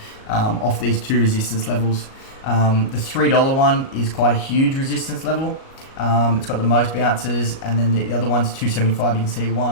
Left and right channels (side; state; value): right; late; 37 ms